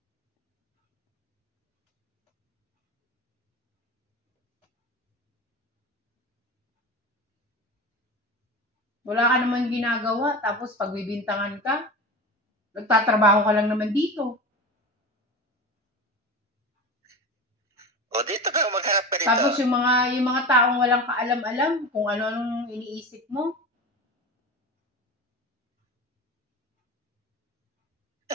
Wala ka naman ginagawa, tapos pagbibintangan ka, nagtatrabaho ka lang naman dito. O dito ka, magharap ka dito. Tapos yung mga taong walang kaalam-alam kung ano-anong iniisip mo.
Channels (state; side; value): normal; both; correlation 0.28